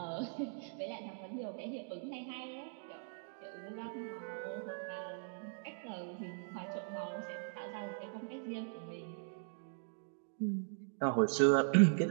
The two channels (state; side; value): silent; left; digital silence